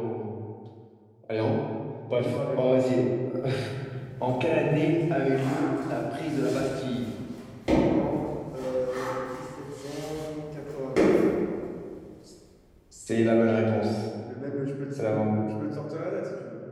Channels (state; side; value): identical; both; correlation 1.00